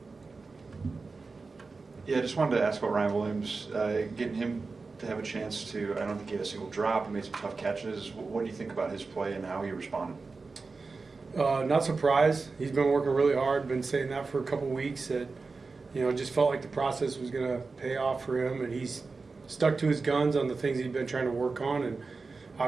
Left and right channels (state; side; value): quieter; left; 4.1 dB